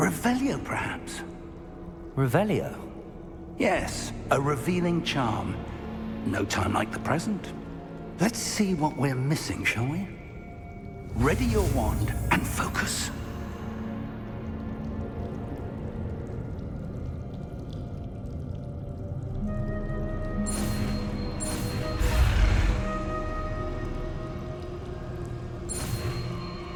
perhaps? Revelio? Yes, a revealing charm. No time like the present. Let's see what we're missing, shall we? Ready your wand and focus.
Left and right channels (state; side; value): identical; both; correlation 1.00